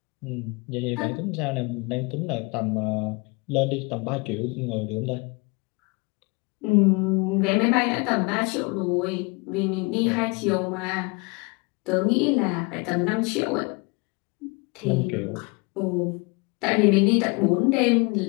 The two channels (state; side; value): quieter; right; 29.2 dB